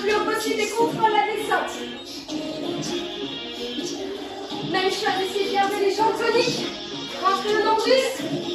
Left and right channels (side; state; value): both; identical; correlation 1.00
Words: haut possible et contrôle la descente. Même chose, essayez de garder les jambes toniques. Rentrez le nombril.